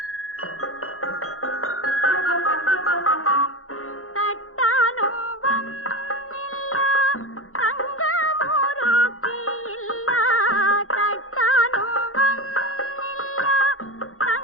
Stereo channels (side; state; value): right; late; 0.62 ms